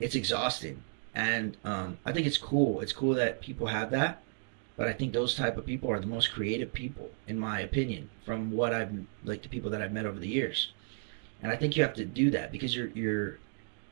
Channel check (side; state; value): left; silent; 56 dB below the other